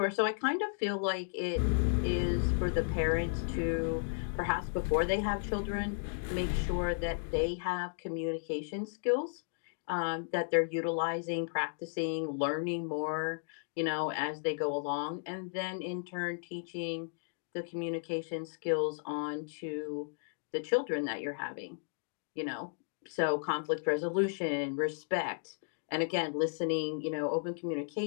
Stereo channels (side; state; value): right; silent; digital silence